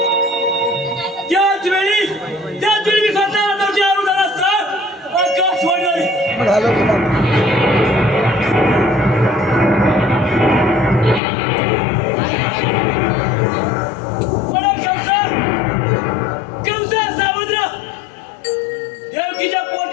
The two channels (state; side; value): drops out; right; at 11.2 s